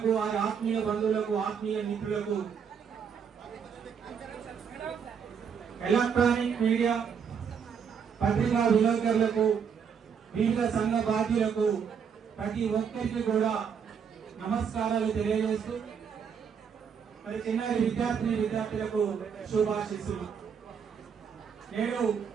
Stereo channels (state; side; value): quieter; left; 7.0 dB